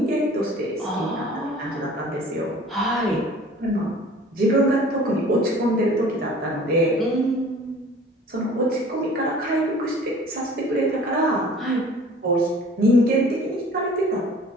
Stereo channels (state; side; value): normal; both; correlation 0.47